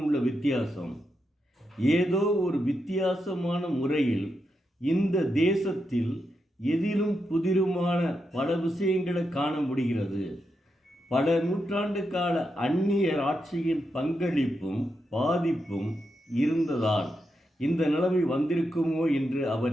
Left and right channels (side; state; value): both; normal; correlation 0.85